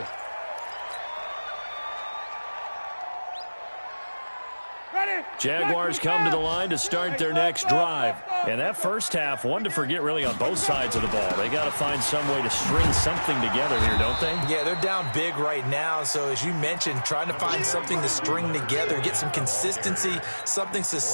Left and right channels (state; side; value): inverted; both; correlation -1.00